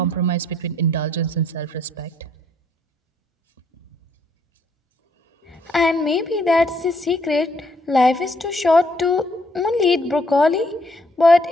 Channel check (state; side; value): normal; both; correlation 0.68